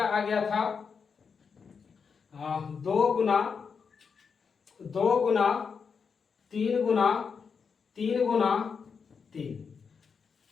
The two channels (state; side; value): quieter; right; 5.9 dB